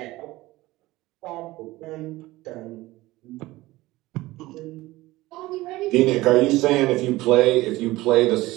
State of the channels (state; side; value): quieter; left; 18.6 dB